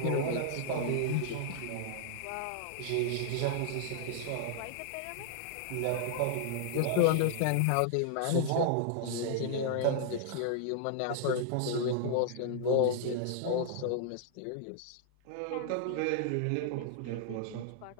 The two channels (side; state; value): both; different; correlation -0.01